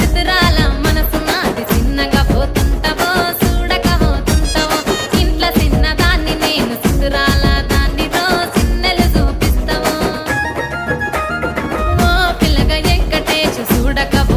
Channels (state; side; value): identical; both; correlation 1.00